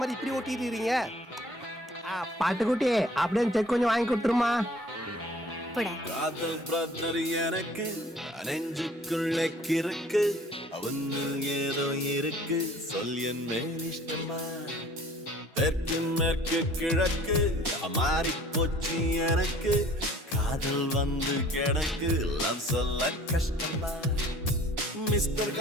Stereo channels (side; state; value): both; normal; correlation 0.53